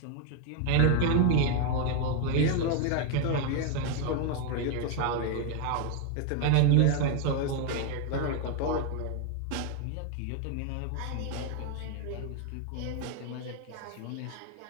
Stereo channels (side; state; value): both; different; correlation 0.01